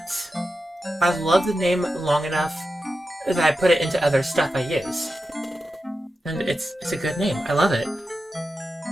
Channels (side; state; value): both; normal; correlation 0.91